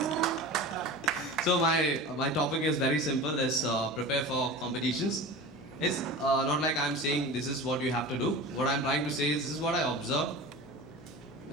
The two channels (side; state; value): both; normal; correlation 0.33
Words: So my topic is very simple. Is prepare for competitions. It's not like I'm saying this is what you have to do. What I'm trying to say is this is what I observed.